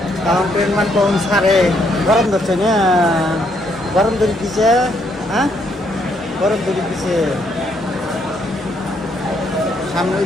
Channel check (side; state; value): both; normal; correlation 0.72